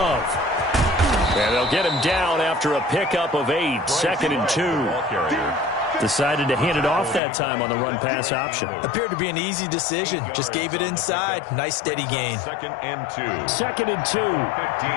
And they'll get him down after a pickup of 8. Second and 2. Decided to hand it off that time on the run-pass option. Appeared to be an easy decision. Just gave it inside. Nice steady gain. Second and 2. Second and 2.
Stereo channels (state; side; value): drops out; right; at 7.2 s